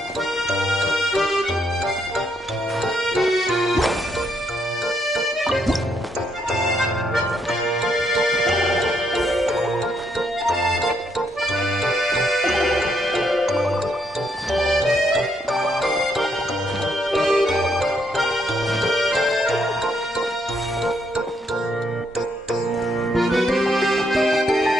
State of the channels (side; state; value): both; normal; correlation 0.74